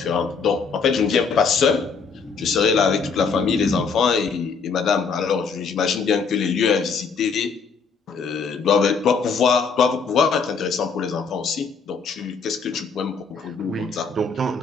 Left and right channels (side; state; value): right; quieter; 5.2 dB